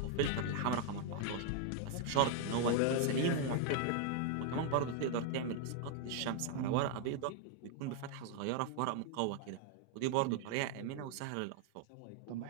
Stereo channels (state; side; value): different; both; correlation 0.00